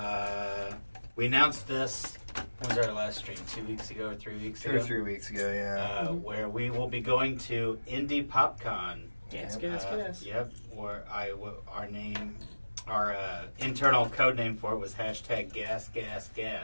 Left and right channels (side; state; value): both; inverted; correlation -1.00